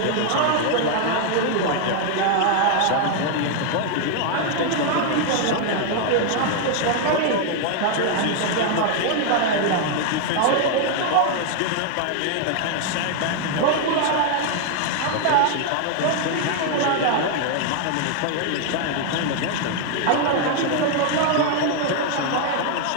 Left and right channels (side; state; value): both; different; correlation 0.00